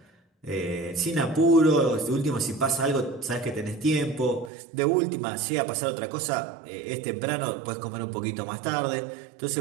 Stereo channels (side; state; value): left; drops out; at 4.5 s